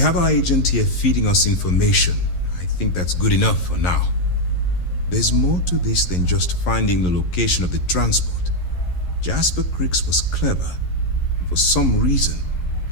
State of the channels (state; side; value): late; right; 11 ms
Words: our agent here feeding us information. I think that's good enough for now. There's more to this than just finding the location of the transport. Jasper Cricks was clever. For some reason,